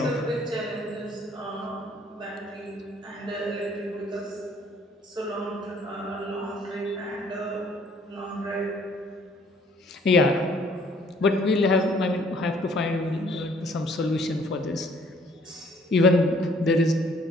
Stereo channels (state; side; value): normal; both; correlation 0.60